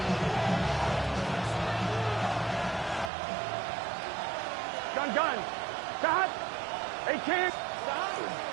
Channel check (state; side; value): drops out; left; at 3.1 s